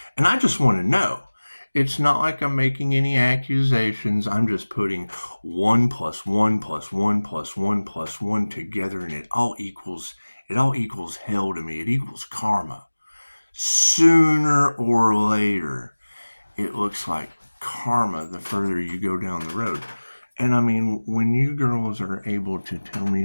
And I just want to know. It's not like I'm making any accusations. I'm just putting 1 + 1 + 1 + 1 + 1 together, and it all equals hell to me. It equals karma. Sooner or later, it looks like karma the further you go down the road. And I mean, when you girls are able to tell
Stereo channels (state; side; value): inverted; both; correlation -1.00